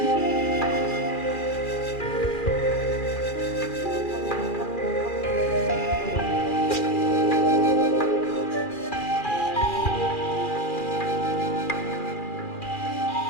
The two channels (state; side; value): late; right; 2.4 ms